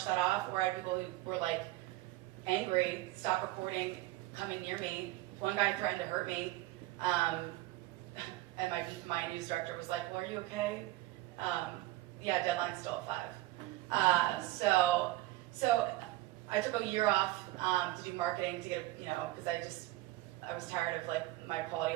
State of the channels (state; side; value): quieter; left; 17.6 dB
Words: that off, or I had people who were angry, stop recording, coming near me. One guy threatened to hurt me, and my news director was like, well, are you okay? Yeah, deadline's still at 5. So I took a year off to do marketing to get because I was tired of my quality